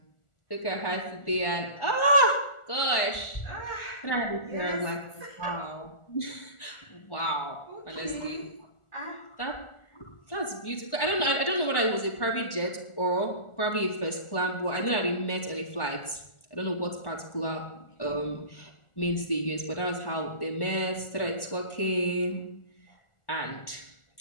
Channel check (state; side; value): late; right; 1.4 ms